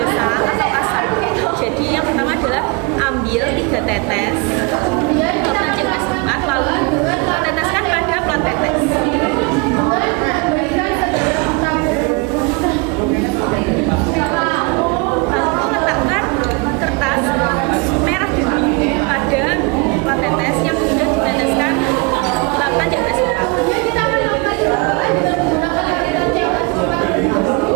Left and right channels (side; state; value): left; quieter; 29.0 dB